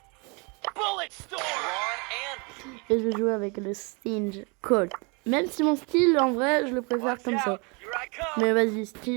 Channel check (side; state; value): left; quieter; 31.4 dB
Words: Bullet storm. Et je vais jouer avec le Stinge Colt. Même si mon style en vrai je le préfère comme ça. Here I come. Mais vas-y,